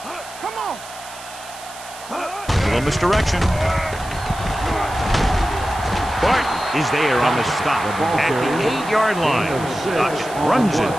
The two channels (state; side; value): noise; right; hiss, 16 dB below the sound